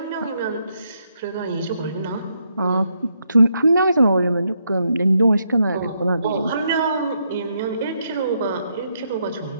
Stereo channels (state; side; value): inverted; both; correlation -0.78